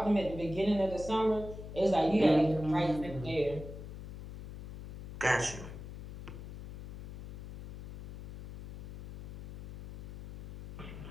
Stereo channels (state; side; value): noise; left; hum, 12 dB below the sound